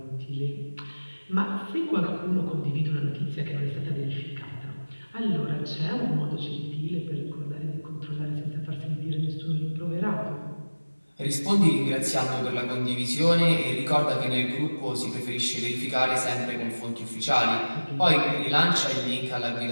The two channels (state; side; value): inverted; both; correlation -1.00